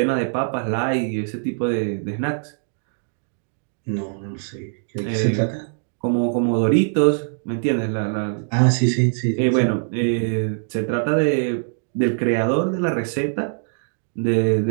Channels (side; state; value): left; silent; digital silence